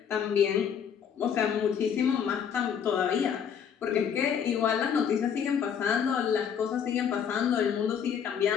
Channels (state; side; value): quieter; right; 7.8 dB